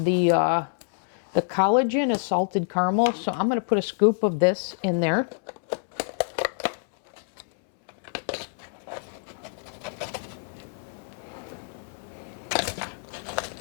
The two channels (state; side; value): silent; right; 60 dB below the other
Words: collagen is salted caramel, so I'm going to put a scoop of this in there.